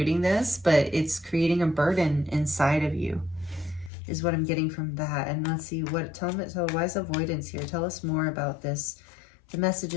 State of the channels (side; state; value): right; drops out; at 3.9 s